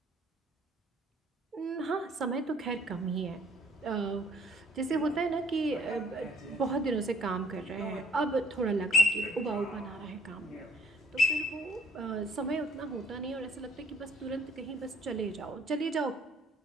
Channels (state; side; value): normal; both; correlation 0.58